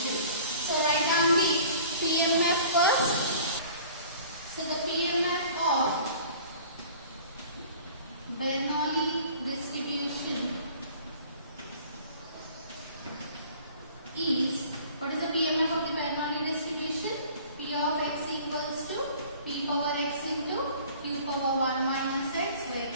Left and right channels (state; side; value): inverted; both; correlation -0.48